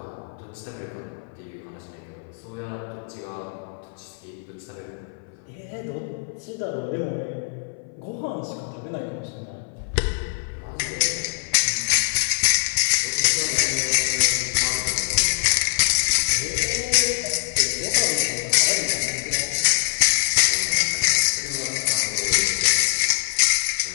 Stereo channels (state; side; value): silent; right; 58 dB below the other